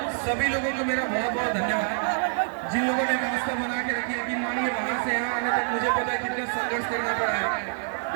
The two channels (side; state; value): left; silent; digital silence